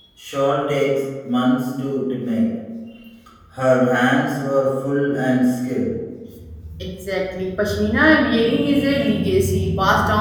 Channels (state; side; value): identical; both; correlation 1.00